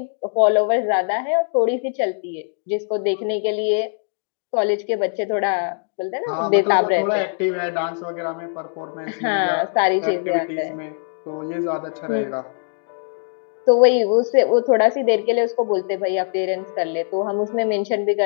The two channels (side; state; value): right; silent; digital silence